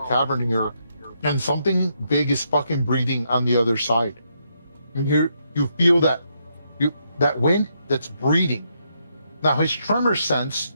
here, and something big is fucking breathing on the other side. You feel that wind that's breathing. Now his tremor sense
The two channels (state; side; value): inverted; both; correlation -0.78